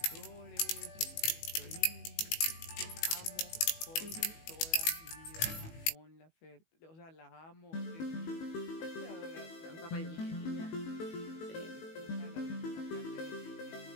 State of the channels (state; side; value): late; right; 19 ms